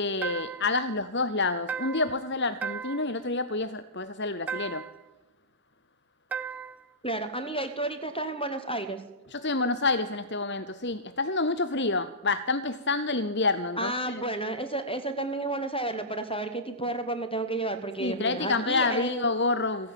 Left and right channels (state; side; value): normal; both; correlation -0.17